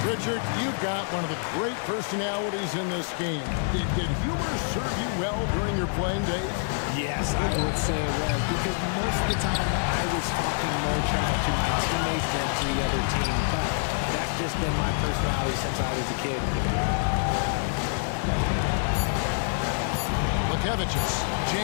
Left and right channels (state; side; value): silent; right; digital silence